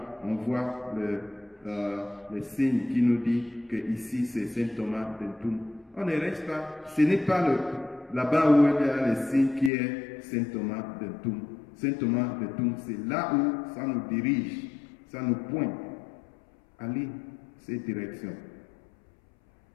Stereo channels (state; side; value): drops out; right; at 9.7 s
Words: on voit le signe qui nous dit que ici c'est Saint Thomas d'Entoum. On ne reste pas, ce n'est pas là-bas où il y a le signe qui est Saint Thomas d'Entoum. Saint Thomas d'Entoum, c'est là où ça nous dirige, ça nous pointe. Allez, cette direction.